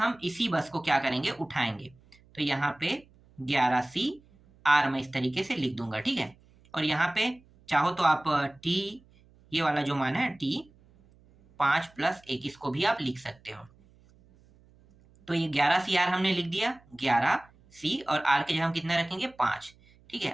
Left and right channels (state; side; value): noise; right; hum, 29 dB below the sound